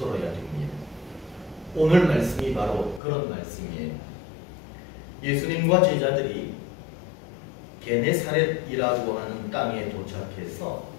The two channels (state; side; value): drops out; right; at 3.0 s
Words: 됩니다. 오늘 말씀이 바로 그런 말씀이에요. 예수님과 제자들이 게네사렛이라고 하는 땅에 도착해서